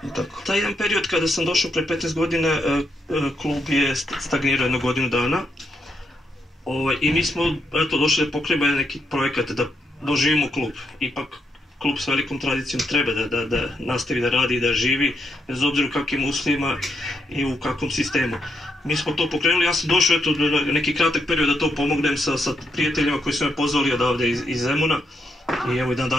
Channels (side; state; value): both; normal; correlation 0.79